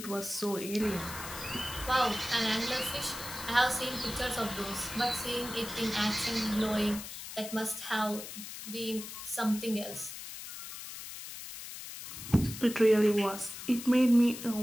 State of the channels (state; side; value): noise; left; hiss, 10 dB below the sound